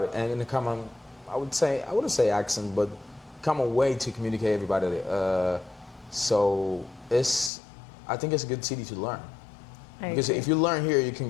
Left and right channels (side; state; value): right; drops out; at 7.5 s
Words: and a common, I wouldn't say accent, but common way to communicate everybody. So I think it's a good city to learn. Because if you learn here, you can